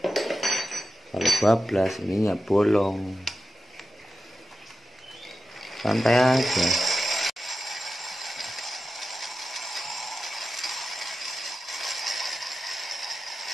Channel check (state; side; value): normal; both; correlation 0.92